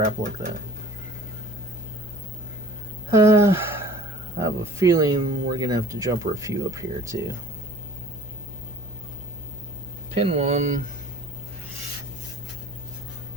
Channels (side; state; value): left; noise; hum, 15 dB below the sound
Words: like that. I have a feeling we're going to have to jumper a few up here too. Pin 1.